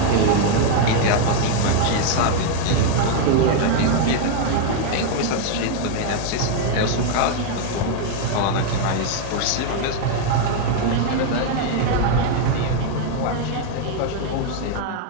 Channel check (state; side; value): different; both; correlation 0.00